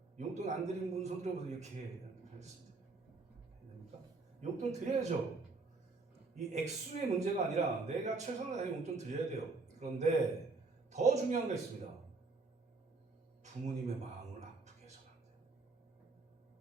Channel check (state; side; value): quieter; left; 3.9 dB